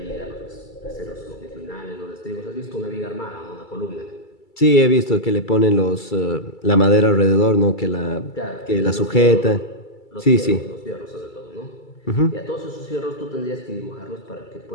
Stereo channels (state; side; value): late; right; 2.3 ms